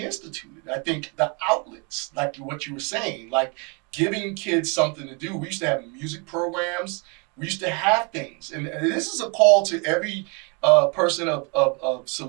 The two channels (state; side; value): quieter; left; 32.8 dB